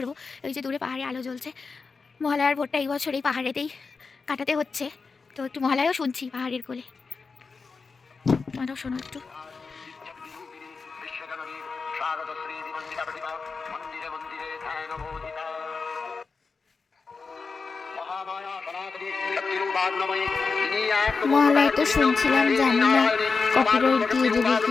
এই যে দূরে পাহাড়ে আলো জ্বলছে। মহালয়ার ভোরটা এই বছর এই পাহাড়েতেই কাটাতে হচ্ছে, তো একটু মহালয়াও শুনছি পাহাড়ের কোলে। তোমরাও শোনো একটু। মহালয়া তো শুনছিলাম, জানি না কপিরাইট দিয়ে দেবে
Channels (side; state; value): right; quieter; 4.7 dB